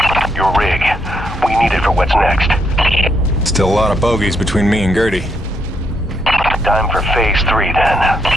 Your rig. We need it for what's next. Still a lot of bogeys between me and Gertie. Time for Phase 3, then.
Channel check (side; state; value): both; normal; correlation 0.76